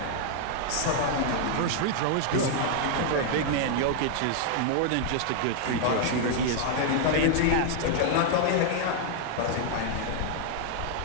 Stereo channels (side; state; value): both; different; correlation 0.00